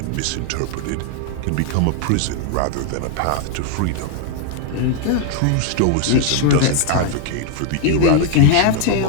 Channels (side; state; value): both; different; correlation 0.00